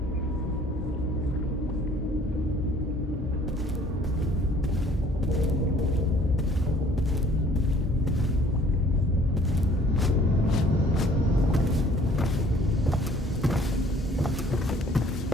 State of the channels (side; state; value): both; normal; correlation 0.56